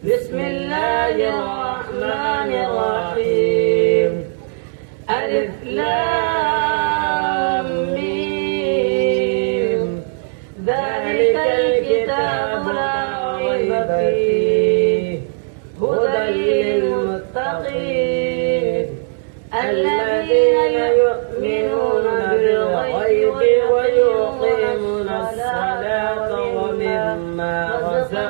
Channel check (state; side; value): silent; left; digital silence